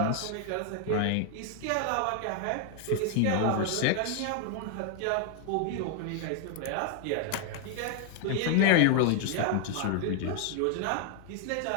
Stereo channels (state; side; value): different; both; correlation 0.00